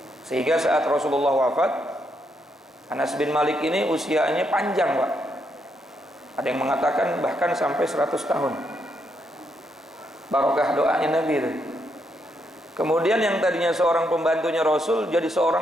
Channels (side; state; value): both; normal; correlation 0.78